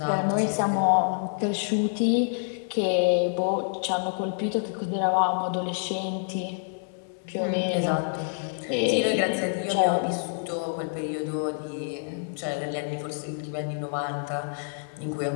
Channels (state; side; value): silent; right; digital silence